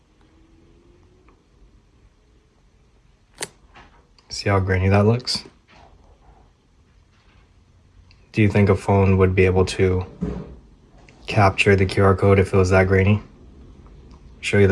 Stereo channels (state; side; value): identical; both; correlation 1.00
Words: See how grainy that looks? Do you think a phone would be able to capture the QR code if it was that grainy? Show you